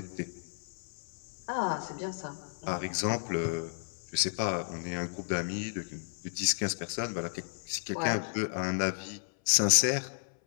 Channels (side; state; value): right; silent; 56 dB below the other